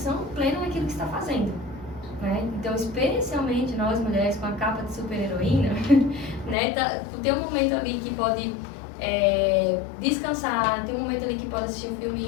plena naquilo que está fazendo, né? Então, especialmente nós mulheres com a capa de super-heroína, né? Tem um momento ali que pode descansar, tem um momento ali que pode assistir um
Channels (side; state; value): right; drops out; at 6.6 s